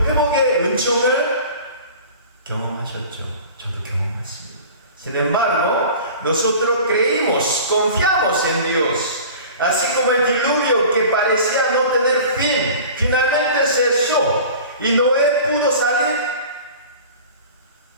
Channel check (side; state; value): both; inverted; correlation -0.40